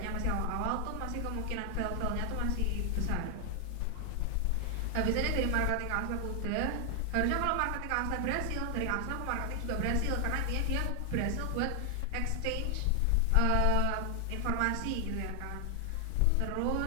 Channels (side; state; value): both; different; correlation 0.00